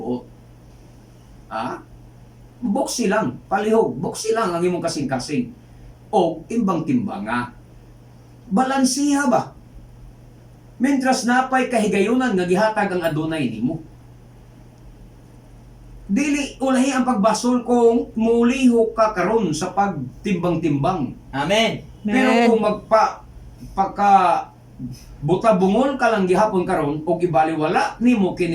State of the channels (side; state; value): both; identical; correlation 1.00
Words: Ha? Buksi lang, palihog, buksi lang ang imong kasing-kasing o timbang-timbang nga. Balansiha ba? Mentras napay kahigayunan nga gihatag ang adunay nimo. Dili ulahi ang pagbasol kung muliho ka karon sa pagtimbang-timbang. Amen. Pero kung pagka buta bungol ka lang gihapon karon o ibaliwala nimo